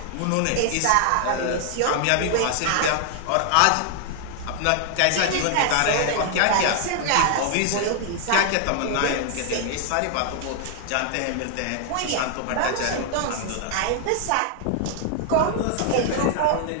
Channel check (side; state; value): both; different; correlation 0.00